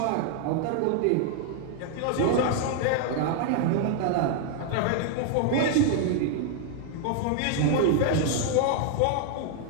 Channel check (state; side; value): different; both; correlation 0.00